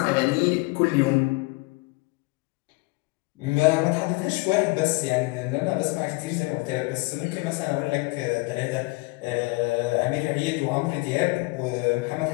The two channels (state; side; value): quieter; right; 25.5 dB